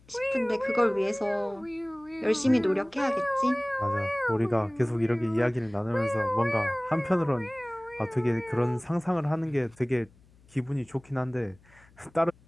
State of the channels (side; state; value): left; noise; hum, 28 dB below the sound